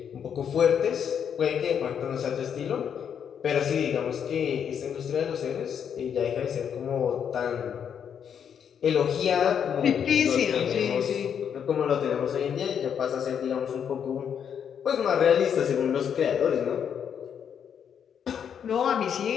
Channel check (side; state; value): right; quieter; 8.0 dB